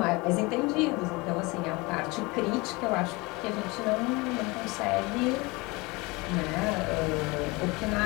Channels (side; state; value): right; quieter; 24.7 dB